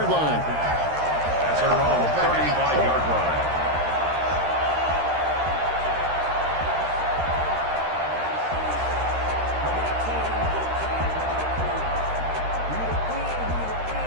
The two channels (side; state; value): left; late; 13 ms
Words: line. That's their own 35-yard line.